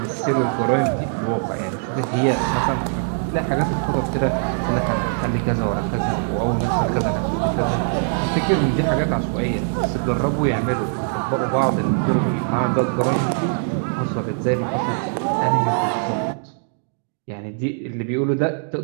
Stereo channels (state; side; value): silent; left; 61 dB below the other